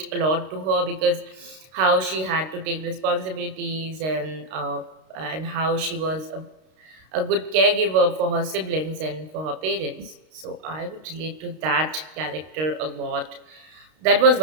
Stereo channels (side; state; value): left; late; 32 ms